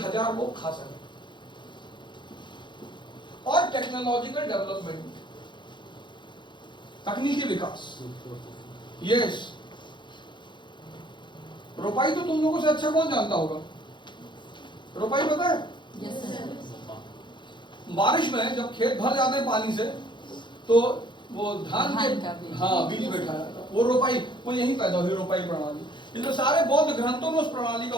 लोग खा सकें। और टेक्नोलॉजिकल डेवलपमेंट, तकनीकी विकास। यस, रोपाई तो तुम लोगों से अच्छा कौन जानता होगा? रोपाई पता है? Yes sir. बारिश में जब खेत भर जाते हैं पानी से, तो वो धान के बीज। हाँ बीज बैठा जाता है, वो रोपाई, वो यही पैदा हुई रोपाई प्रणाली। इसमें सारे बौद्ध ग्रंथों में उस प्रणाली का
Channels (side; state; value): right; late; 0.23 ms